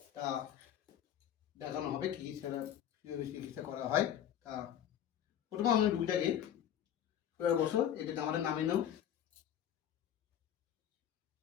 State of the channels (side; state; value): right; quieter; 10.1 dB